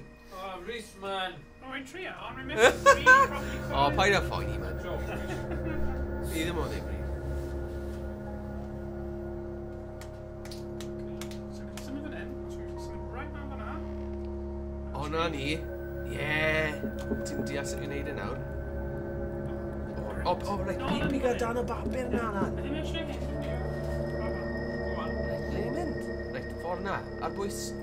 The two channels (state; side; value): identical; both; correlation 1.00